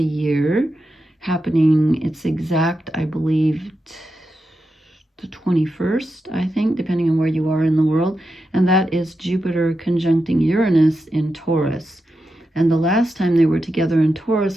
year happening. It's exact, I believe, the 21st, I think, depending on where you are in the world, and that is Jupiter conjuncting Uranus in Taurus. And the last time they were together in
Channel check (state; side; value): normal; both; correlation 0.88